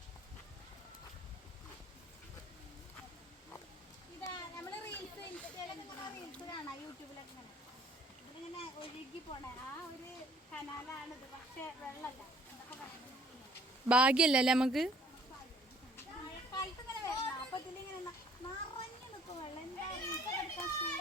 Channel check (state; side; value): normal; both; correlation 0.57